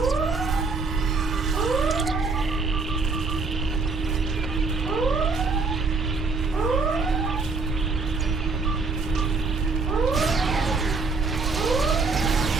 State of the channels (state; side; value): quieter; left; 4.1 dB